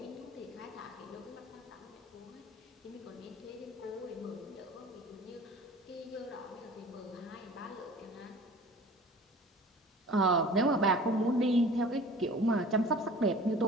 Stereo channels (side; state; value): both; normal; correlation 0.43